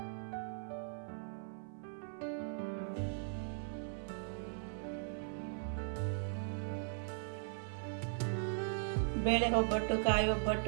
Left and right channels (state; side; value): silent; left; 52 dB below the other